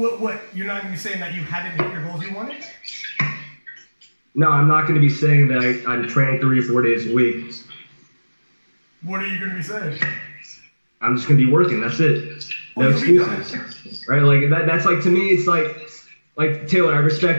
You're not going to be saying that you hadn't hit your goals you wanted? No, I'm not going to be saying that I'm training 3 or 4 days a week. What are you going to be saying? I'm just going to be working, that's it. No excuses, right? Like that's like, to me, it's like Taylor, I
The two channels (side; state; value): both; inverted; correlation -1.00